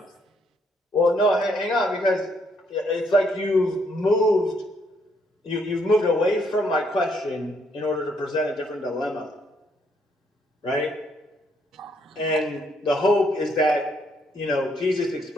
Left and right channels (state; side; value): normal; both; correlation 0.71